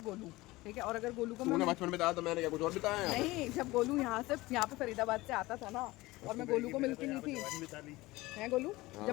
गोलू, ठीक है? और अगर गोलू को तूने बचपन में बताया तो मैंने क्या कुछ और बताया है? नहीं, जब गोलू यहाँ पे फरीदाबाद से आता था ना, और मैं गोलू को मिलती नहीं थी, है गोलू, जब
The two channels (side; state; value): right; quieter; 19.9 dB